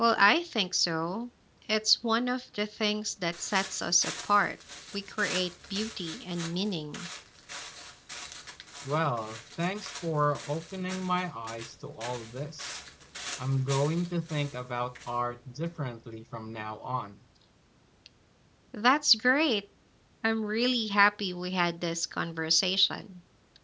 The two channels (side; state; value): both; identical; correlation 1.00